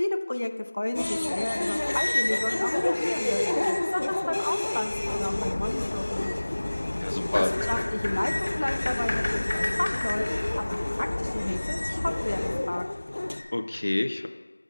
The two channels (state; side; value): inverted; both; correlation -1.00